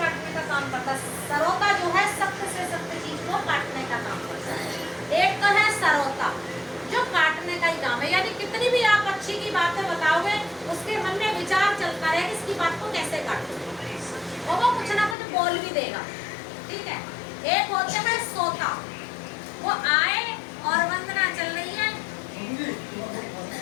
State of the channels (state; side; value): drops out; right; at 15.2 s